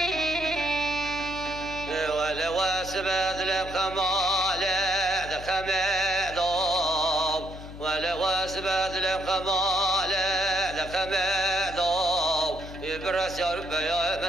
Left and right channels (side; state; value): left; noise; hum, 13 dB below the sound